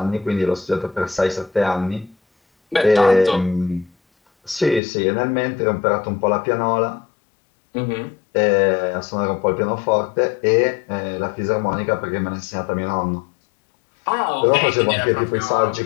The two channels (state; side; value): drops out; right; at 4.8 s